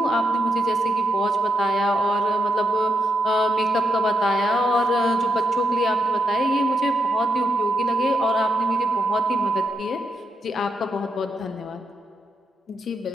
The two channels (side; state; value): both; normal; correlation 0.81